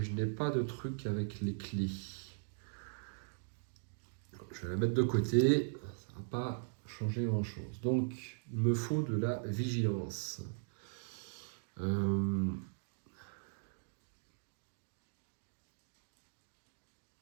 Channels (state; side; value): silent; left; digital silence